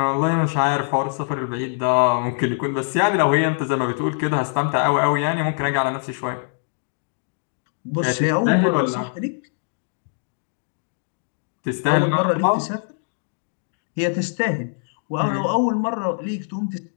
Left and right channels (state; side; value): silent; right; digital silence